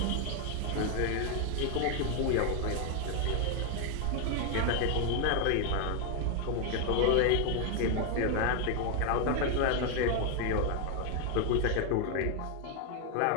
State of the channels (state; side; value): different; both; correlation 0.01